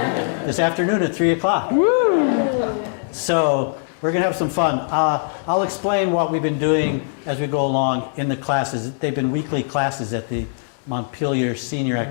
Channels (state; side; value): silent; right; digital silence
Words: This afternoon at 3 o'clock. Woo! So we're going to have some fun. I'll explain what we've been doing as we go along in the classes. They've been weekly classes at the Montpelier Senior